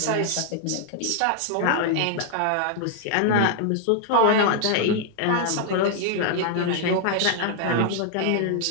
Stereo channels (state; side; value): different; both; correlation -0.01